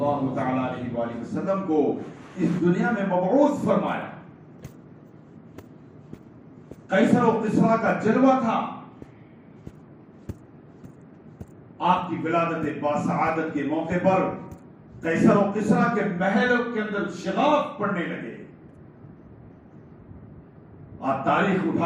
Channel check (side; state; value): both; identical; correlation 1.00